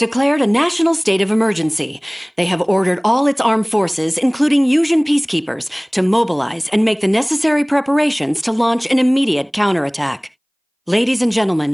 a national state of emergency. They have ordered all its armed forces, including Yusian peacekeepers, to mobilize and make the necessary preparations to launch an immediate counterattack. Ladies and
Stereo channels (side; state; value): both; identical; correlation 1.00